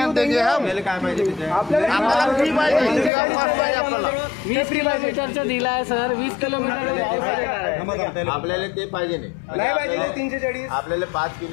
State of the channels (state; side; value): drops out; right; at 3.1 s